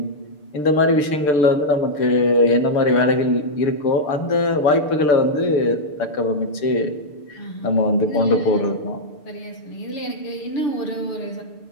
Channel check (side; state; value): right; late; 6.8 ms